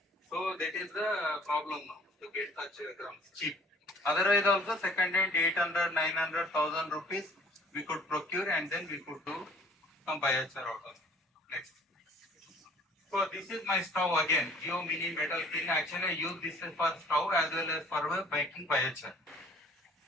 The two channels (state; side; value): normal; both; correlation 0.54